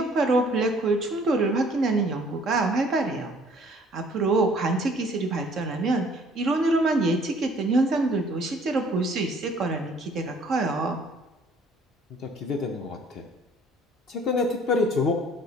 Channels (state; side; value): normal; both; correlation 0.57